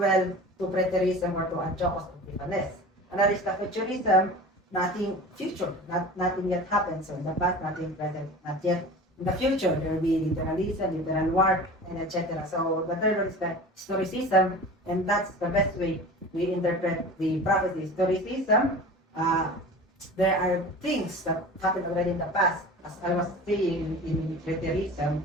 to preterism or to Antiochus Epiphanes. Another is the futurism, nothing future, nothing yet happened. So in the past, nothing present, not yet. In the future, there will be literalism, literal war, and etc. So the third one is the historicism, and that's the best way we interpret the prophecy. Historicism, there are things that happened already in the past. As I was saying in preterism,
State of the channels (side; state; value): both; normal; correlation 0.37